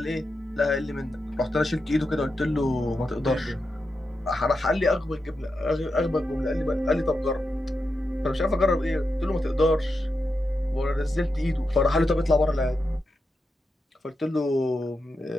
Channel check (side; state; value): both; normal; correlation 0.88